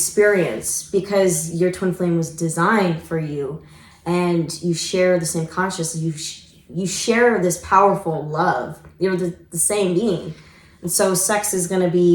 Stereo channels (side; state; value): both; identical; correlation 1.00